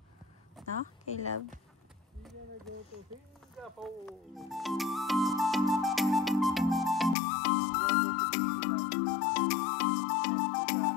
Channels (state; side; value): drops out; right; at 7.2 s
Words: No, Caleb? We're gonna go to Singapore.